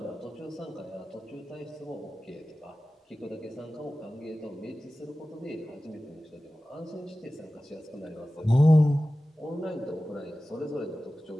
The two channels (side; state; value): both; normal; correlation 0.96